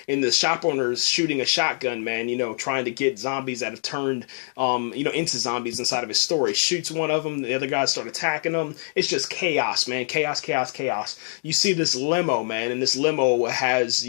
and the shop owner's shooting a shotgun, man, you know, trying to get zombies that have turned, into zombies inside of his store. He shoots one of them. The other guys start attacking them. It's just chaos, man. Chaos. You see this limo, man, and this limo has,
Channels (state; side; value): silent; right; digital silence